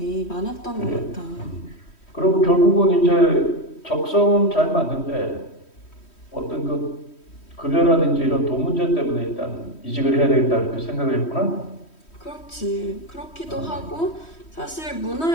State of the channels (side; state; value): right; late; 3.1 ms